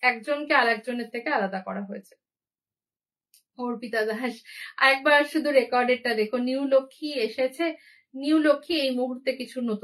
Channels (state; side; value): identical; both; correlation 1.00